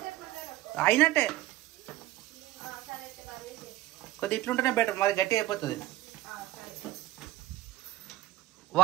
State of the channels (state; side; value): quieter; left; 16.0 dB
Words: అయినట్టే కొద్ది ఇట్లుంటేనే బెటర్, మరి గట్టి అయిపోతుంది.